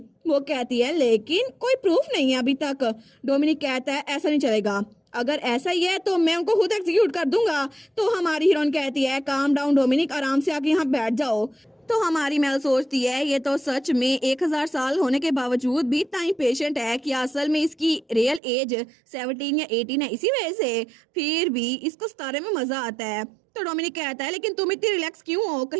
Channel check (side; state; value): left; drops out; at 18.4 s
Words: वो कहती है लेकिन कोई प्रूफ नहीं है अभी तक। डोमिनिक कहता है ऐसा नहीं चलेगा, अगर ऐसा ही है तो मैं उनको खुद एग्जीक्यूट कर दूंगा। तो हमारी हीरोइन कहती है काम डाउन डोमिनिक, आराम से आके यहाँ बैठ जाओ। तो हमारी मेल सोचती है ये तो सच में 1000 साल होने के बावजूद भी इतना पेशेंट है कि असल में इसकी रियल एज 17 या 18 है, इसी वजह से फिर भी इसको सितारे में मजा आता है। तो डोमिनिक कहता है लेकिन तुम इतनी रिलैक्स क्यों हो,